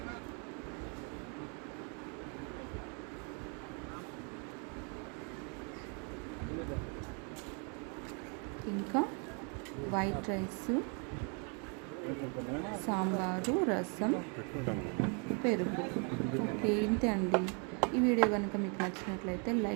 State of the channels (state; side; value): quieter; left; 37.6 dB